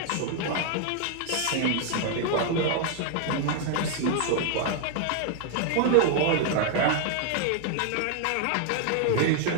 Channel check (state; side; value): different; both; correlation 0.00